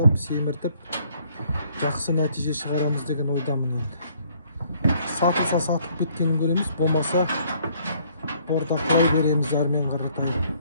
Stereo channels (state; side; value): inverted; both; correlation -0.64